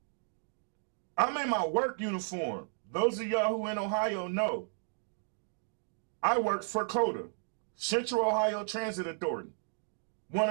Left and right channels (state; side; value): silent; left; digital silence